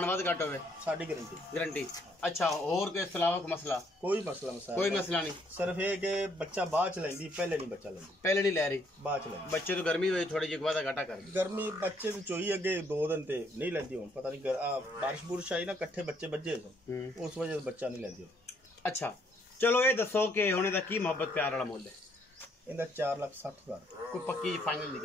वाद घट होवे साडी गारंटी गारंटी। अच्छा और के अलावा मसला? कोई मसला कोई मसला नहीं। सिर्फ ये कि बच्चा बाद च लेंदी पहले नहीं बच्चा लेंदी। पहले नहीं ले रही बाद च लेंदी। बच्चे तो गर्मी हुई थोड़ी जी वादा घाटा कर गर्मी बच्चे तो चोई अगे 2 दिन ते नहीं लेंदी हुन पता नहीं बारिश बुरिश आई ना कट्ठे बच्चे बज्जे उस वजह से बच्चा नहीं लेंदी। अच्छा चलो ये दसो कि हुणे दा की मोहब्बत प्यार वाला मुल है? इंदा 4,60,000। कोई पक्की फाइनल दी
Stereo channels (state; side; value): normal; both; correlation 0.69